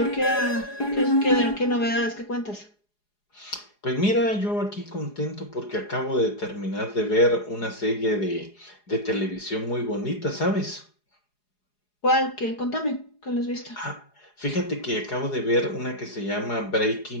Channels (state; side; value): late; right; 4.8 ms